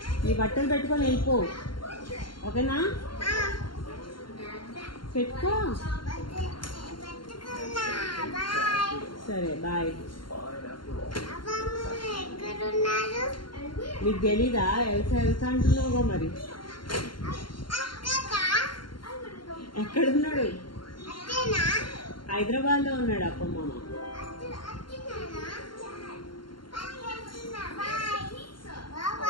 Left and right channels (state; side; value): late; right; 0.72 ms